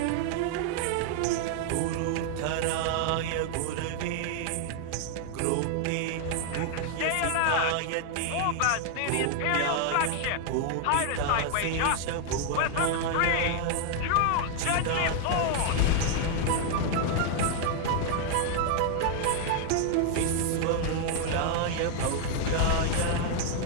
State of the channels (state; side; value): different; both; correlation 0.00